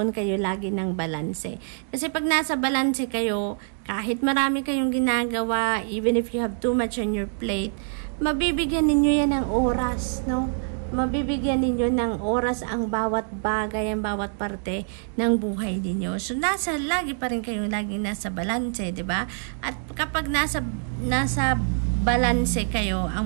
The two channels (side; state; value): left; silent; digital silence